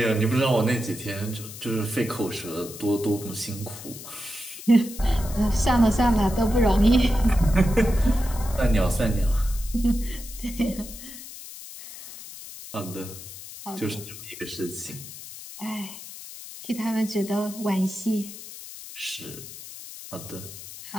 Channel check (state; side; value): noise; left; hiss, 13 dB below the sound